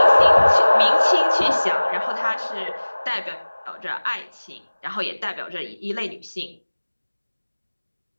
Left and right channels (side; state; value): both; inverted; correlation -1.00